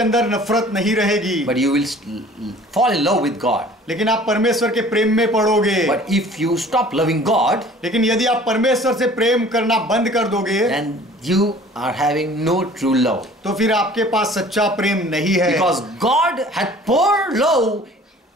नफरत नहीं रहेगी, But you will fall in love with God. लेकिन आप परमेश्वर के प्रेम में पड़ोगे। But if you stop loving God, लेकिन यदि आप परमेश्वर से प्रेम करना बंद कर दोगे, then you are having no true love. तो फिर आपके पास सच्चा प्रेम नहीं है। Because God had poured love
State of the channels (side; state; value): both; normal; correlation 0.49